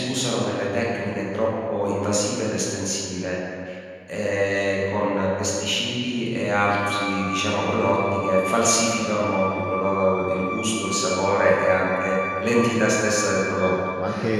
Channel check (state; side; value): identical; both; correlation 1.00